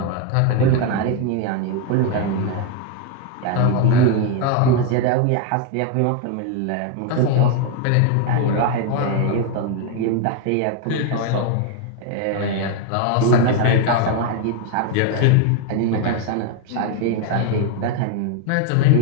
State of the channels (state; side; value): different; both; correlation 0.01